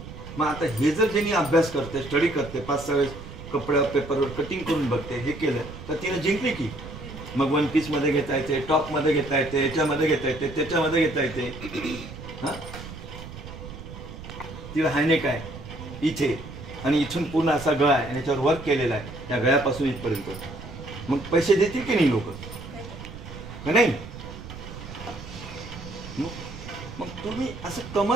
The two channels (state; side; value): noise; right; rumble, 12 dB below the sound